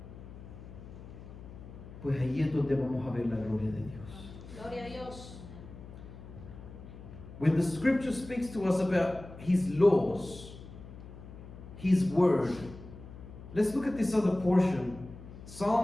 pues ahí es donde vamos a ver la gloria de Dios. Gloria a Dios. When the scripture speaks to us about His laws, His word, let's look at this other portion.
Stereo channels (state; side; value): noise; left; hum, 15 dB below the sound